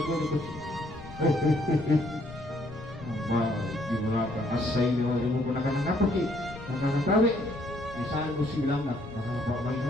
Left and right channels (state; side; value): noise; left; rumble, 16 dB below the sound